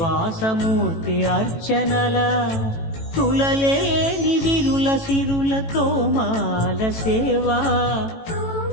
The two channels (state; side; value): late; right; 18 ms